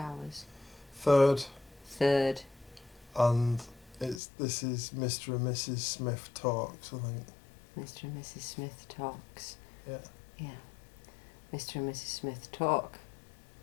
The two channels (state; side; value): drops out; right; at 4.2 s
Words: Third. And this is Mr. and Mrs. Smith Talks, I think. Mr. and Mrs. Smith Talks. Yeah. Yeah. Mr. and Mrs. Smith Talk.